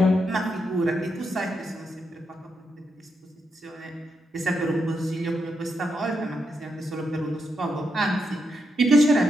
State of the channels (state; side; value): normal; both; correlation 0.82